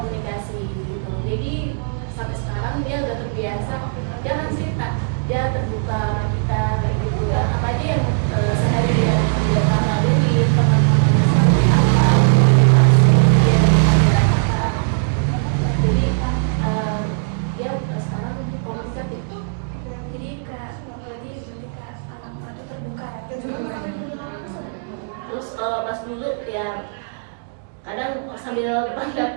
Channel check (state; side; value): silent; left; digital silence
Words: gitu, jadi sampai sekarang dia udah terbiasa, dia kan cerita, dia terbuka sama kita kayak gitu kan, apa aja yang seharian yang dia lalui, teman-temannya seperti apa, dia dari panggilan apa. Jadi dia sekarang komunikatif. Jadi berarti ketika anak Mbak itu terbuka ya. Terus kalau pas dulu ya kadang sambil depan